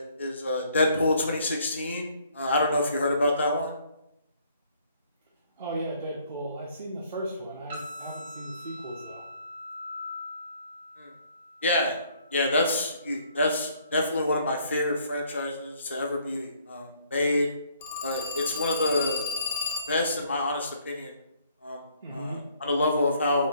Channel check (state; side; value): inverted; both; correlation -0.64